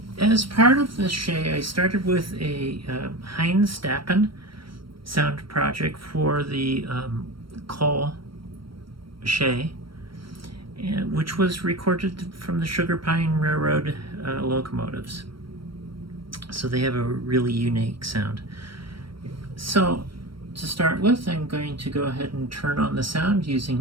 As part of the Shay, I started with a Heniz Dappen sound project for the coal Shay, which was recorded from the Sugar Pine Railroad locomotives. So they have a really unique sound. So to start with, I'm going to go ahead and turn on the sound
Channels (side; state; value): left; late; 0.74 ms